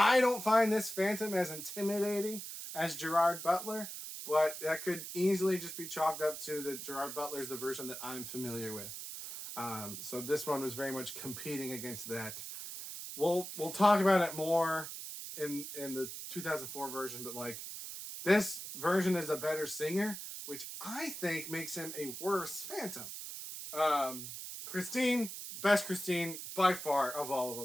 don't find this Phantom as intimidating as Gerard Butler, but that could easily just be chalked up to that Gerard Butler is the version that I'm familiar with. So this one was very much competing against that. We'll talk about it more in the 2004 version, but like this version is a better singer, which I think makes him a worse Phantom. Christine, best Christine by far of all of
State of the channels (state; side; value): noise; right; hiss, 8 dB below the sound